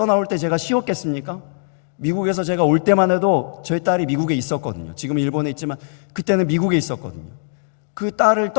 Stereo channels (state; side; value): silent; right; digital silence